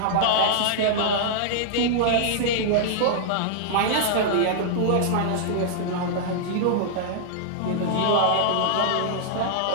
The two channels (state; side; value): different; both; correlation -0.01